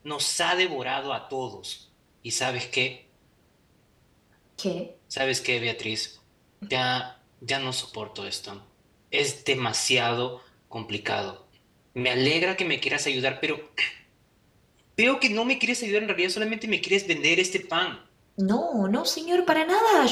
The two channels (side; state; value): both; identical; correlation 1.00